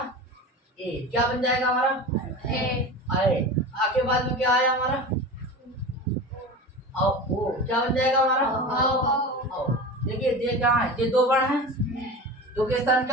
ए, क्या बन जाएगा हमारा, आए। आ के बाद में क्या आया हमारा, ओ, क्या बन जाएगा हमारा, देखिए ये क्या है, ये 2 वर्ण है, 2 के स्थान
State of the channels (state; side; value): normal; both; correlation 0.30